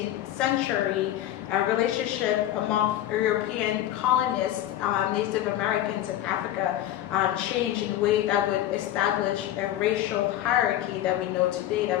century, a relationship among European colonists, Native Americans in Africa, changed in a way that would establish a racial hierarchy that we know today,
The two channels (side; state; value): right; quieter; 12.9 dB